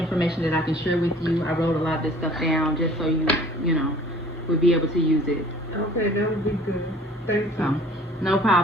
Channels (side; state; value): both; normal; correlation 0.50